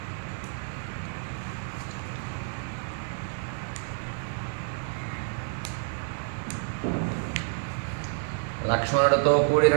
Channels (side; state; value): left; silent; digital silence